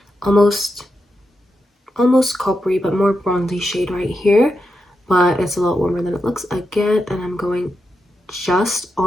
almost coppery but more bronzy shade right here, but it's a lot warmer than it looks again. And I'm going just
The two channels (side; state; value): both; normal; correlation 0.87